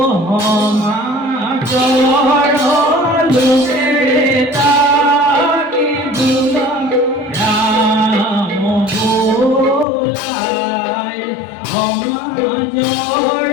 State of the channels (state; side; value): drops out; right; at 9.9 s